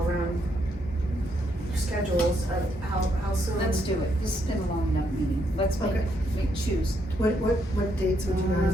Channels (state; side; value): normal; both; correlation 0.75